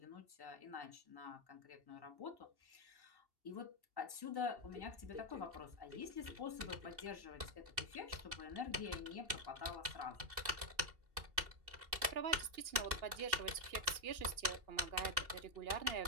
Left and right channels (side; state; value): left; late; 2.6 ms